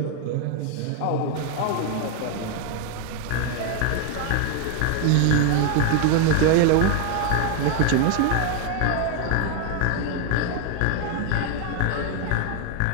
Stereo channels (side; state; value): both; different; correlation 0.01